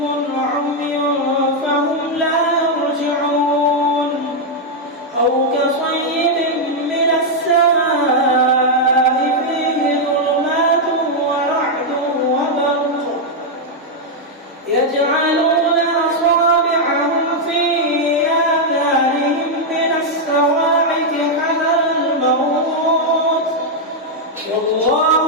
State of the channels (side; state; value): both; normal; correlation -0.01